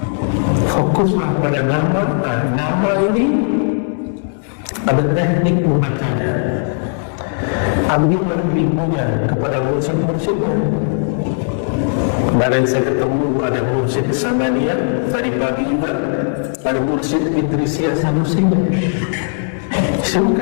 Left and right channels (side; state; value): right; silent; digital silence